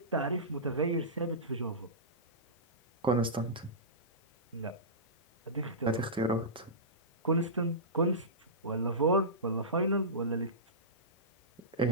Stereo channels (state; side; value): normal; both; correlation -0.19